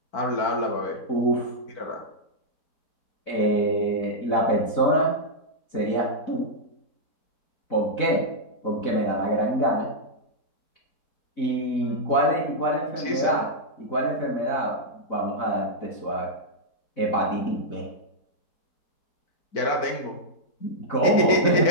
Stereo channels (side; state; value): right; late; 4.5 ms